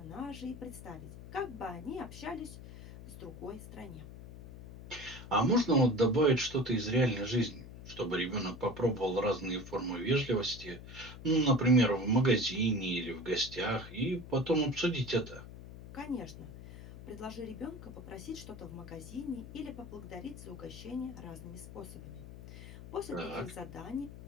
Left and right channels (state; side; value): noise; left; hum, 14 dB below the sound